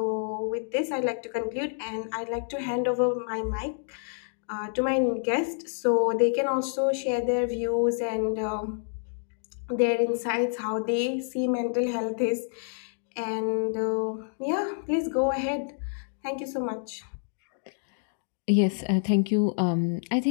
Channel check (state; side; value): silent; right; digital silence